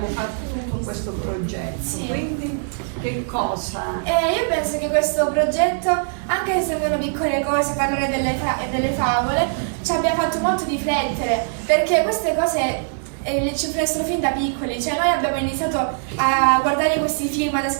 fatto tutto questo progetto, Sì. quindi che cosa? Io penso che questo progetto, anche se sembrano piccole cose, parlare delle favole, ci abbia fatto molto riflettere, perché queste cose ci influenzano fin da piccoli, cioè noi abbiamo iniziato a guardare questi film, ad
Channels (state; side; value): silent; left; digital silence